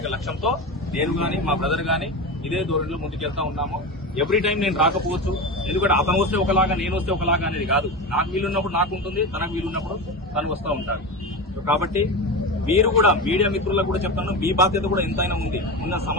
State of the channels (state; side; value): normal; both; correlation 0.22